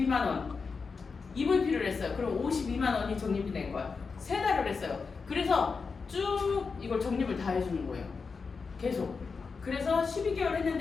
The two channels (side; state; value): right; quieter; 4.9 dB